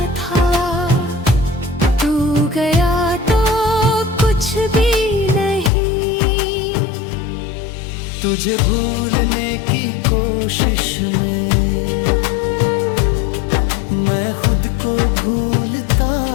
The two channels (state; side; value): drops out; right; at 5.7 s